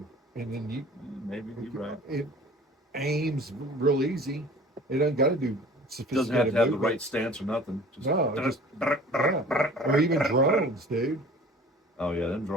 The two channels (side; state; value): both; normal; correlation 0.46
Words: and then Maybe you're right. it aims real easy. It doesn't got to do Doesn't have sophisticated to have the movement. right stance or nothing. No, yeah. Or even drones, dude. Oh yeah, them